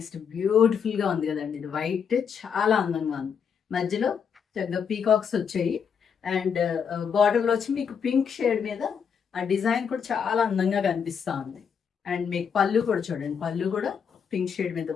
బ్యూటిఫుల్గా ఉంది కదండి, ఇది వైట్ చాలా అందంగా ఉంది. మధ్యలో చక్కగా పీకాక్స్ వచ్చాయి. అండ్ బార్డర్లో వచ్చి మీకు పింక్ షేడ్ మీద ఆ డిజైన్ కూడా చాలా అందంగా కనిపిస్తూ ఉంది. అండ్ మీకు పళ్ళు కూడా చూడండి, పళ్ళు కూడా పింక్ షేడ్ మీద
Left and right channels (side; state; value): right; quieter; 7.0 dB